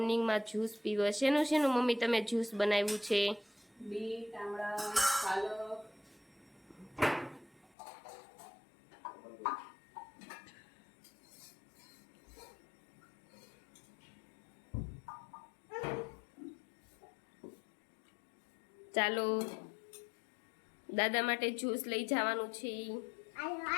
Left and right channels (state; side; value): drops out; right; at 7.7 s